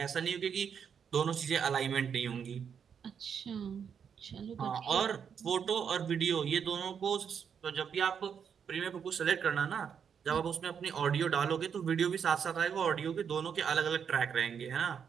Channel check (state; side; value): quieter; left; 7.3 dB